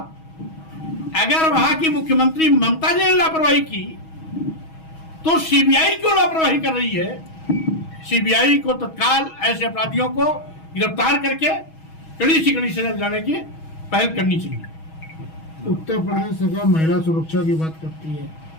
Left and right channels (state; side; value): late; right; 6.2 ms